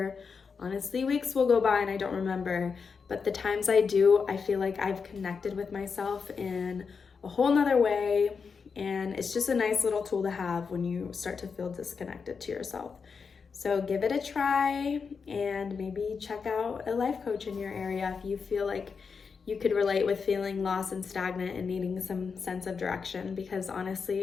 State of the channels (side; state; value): right; quieter; 5.5 dB